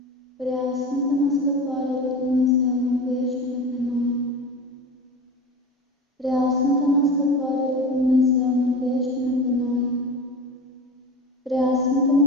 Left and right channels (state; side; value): normal; both; correlation 0.31